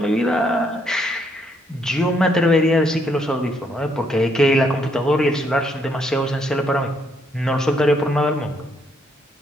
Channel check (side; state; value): both; normal; correlation 0.72